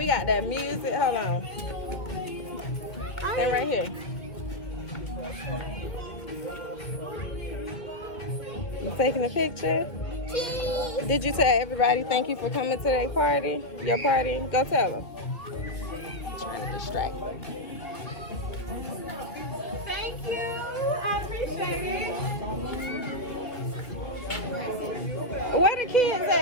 got that music. Hold on. Stay right here. You taking a picture? Did you tell everybody thank you for coming to their party? Your party? Go tell them. I'm trying to distract them. Thank you. I appreciate it. Where the kids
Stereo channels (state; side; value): late; right; 2.5 ms